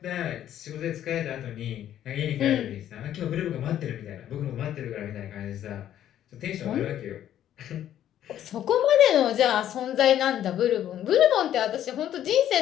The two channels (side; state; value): right; quieter; 11.2 dB